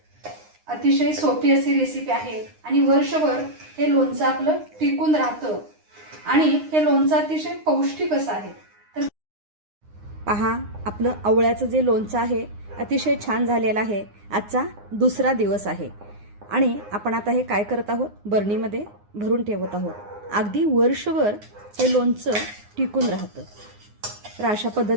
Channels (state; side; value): late; left; 9.7 ms